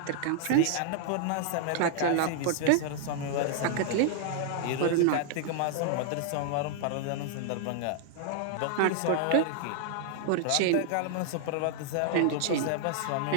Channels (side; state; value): both; different; correlation -0.01